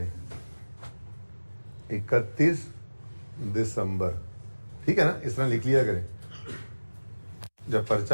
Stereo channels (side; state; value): both; inverted; correlation -1.00